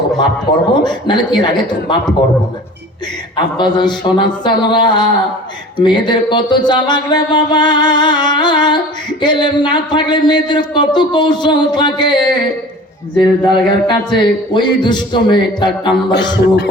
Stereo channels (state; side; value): normal; both; correlation 0.41